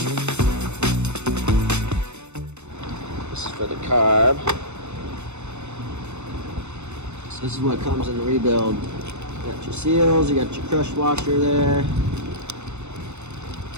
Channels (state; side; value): late; left; 0.82 ms